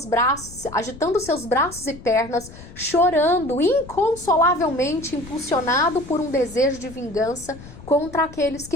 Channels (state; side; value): noise; left; rumble, 17 dB below the sound